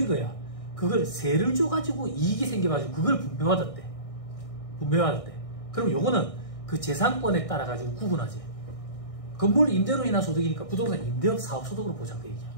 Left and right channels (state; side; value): late; right; 1.6 ms